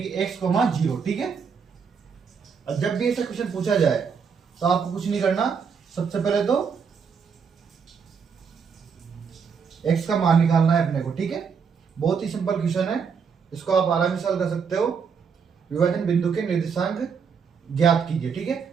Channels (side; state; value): left; quieter; 6.2 dB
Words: कि x को मान 0, ठीक है। और जब भी ऐसा क्वेश्चन पूछा जाए तो आपको कुछ नहीं करना, सबसे पहले तो x का मान निकालना है अपने को, ठीक है। बहुत ही सिंपल क्वेश्चन है, इसको आप आराम से हल कर सकते हो। विभाजन बिंदु के निर्देशांक ज्ञात कीजिए, ठीक